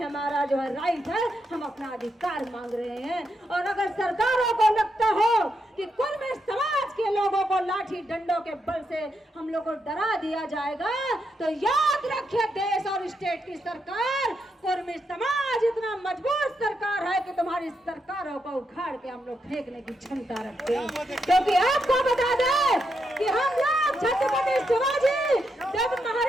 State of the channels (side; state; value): both; normal; correlation 0.82